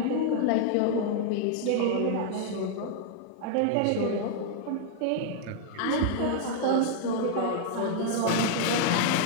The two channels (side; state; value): both; different; correlation 0.00